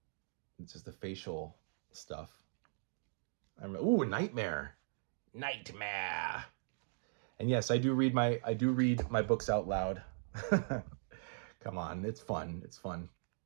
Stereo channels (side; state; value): left; silent; digital silence